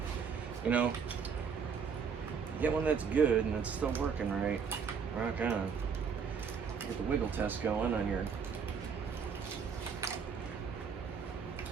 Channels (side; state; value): left; quieter; 6.4 dB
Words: you know, get one that's good and it's still working right. Rock on. Get the wiggle test going on your.